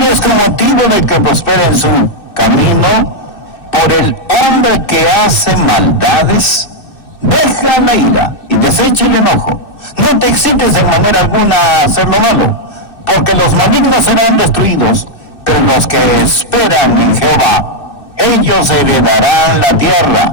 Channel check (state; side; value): late; right; 2.6 ms